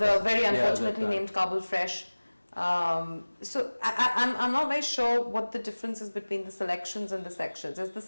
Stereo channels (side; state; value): both; inverted; correlation -1.00